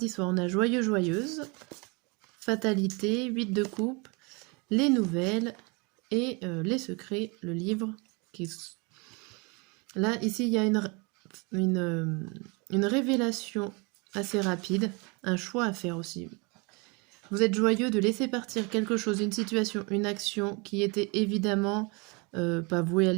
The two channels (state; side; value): quieter; left; 29.7 dB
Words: soir, on a joyeux, joyeuse, fatalité, 8 de coupe, les nouvelles et les secrets, le livre. Là, ici, il y a une révélation assez rapide, un choix à faire aussi. Vous êtes joyeux de laisser partir quelque chose, une situation, une action qui était évidemment pas vouée à